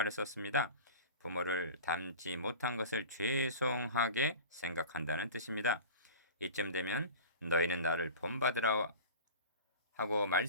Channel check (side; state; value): both; inverted; correlation -0.36